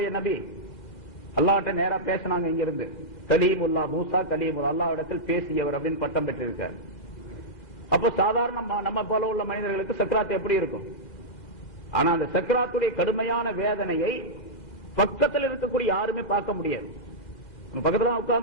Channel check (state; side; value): late; right; 2.4 ms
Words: நபி, அல்லாஹ்ட்ட நேரா பேசினாங்க. இங்க இருந்து கலீமுல்லா, மூசா கலீமுல்லா, அல்லாஹ்விடத்தில் பேசியவர் அப்படின்னு பட்டம் பெற்றிருக்கார். அப்ப சாதாரண நம்ம போல உள்ள மனிதர்களுக்கு சக்ராத் எப்படி இருக்கும்? ஆனா அந்த சக்ராத்துடைய கடுமையான வேதனையை பக்கத்தில் இருக்கக்கூடிய யாருமே பார்க்க முடியாது. பக்கத்துல